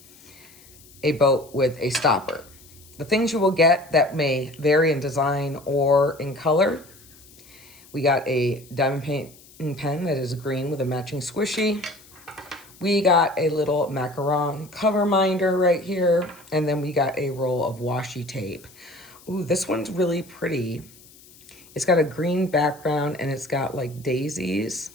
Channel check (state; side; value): noise; left; hiss, 24 dB below the sound